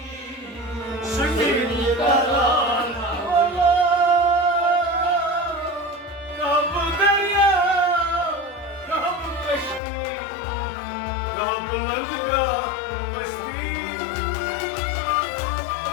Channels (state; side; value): drops out; right; at 9.8 s